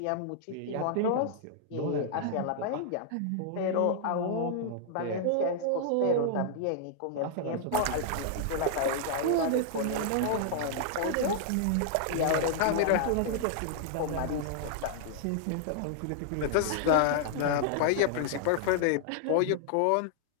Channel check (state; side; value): different; both; correlation -0.01